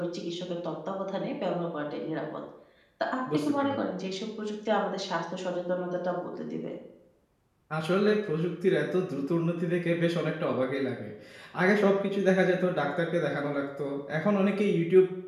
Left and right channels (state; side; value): identical; both; correlation 1.00